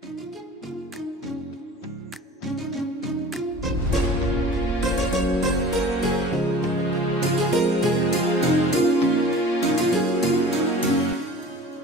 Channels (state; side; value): normal; both; correlation 0.42